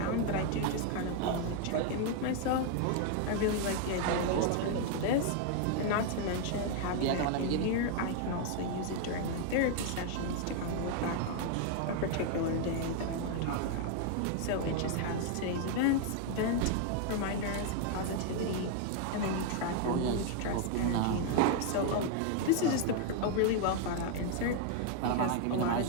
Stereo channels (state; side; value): different; both; correlation 0.00